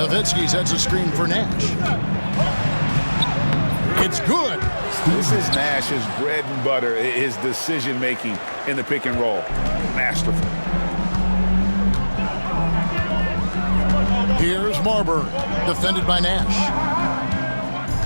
sets a screen for Nash. It's good. This is Nash's bread and butter, his decision-making in the pick and roll. Masterful. Here's Marbury, defended by Nash.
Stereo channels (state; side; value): inverted; both; correlation -1.00